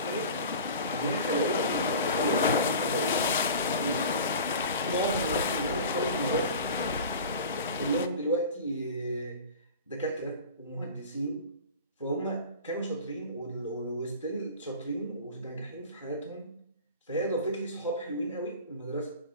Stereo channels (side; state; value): both; inverted; correlation -0.37